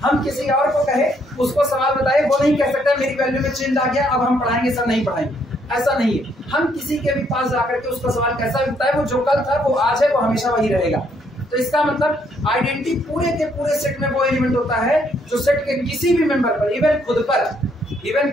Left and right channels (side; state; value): both; normal; correlation 0.70